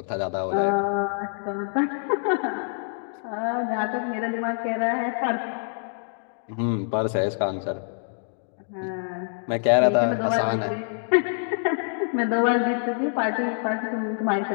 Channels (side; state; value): right; silent; digital silence